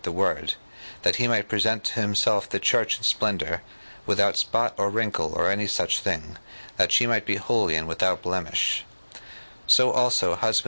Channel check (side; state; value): both; inverted; correlation -1.00